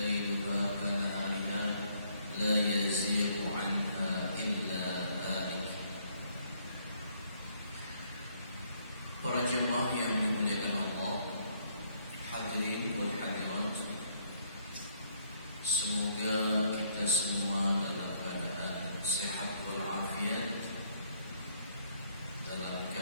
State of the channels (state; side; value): inverted; both; correlation -0.68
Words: كنهارها لا يزيغ عنها إلا هالك. Para jemaah yang dimuliakan Allah, hadirin wal hadirat, semoga kita semua dalam keadaan sehat walafiat, dalam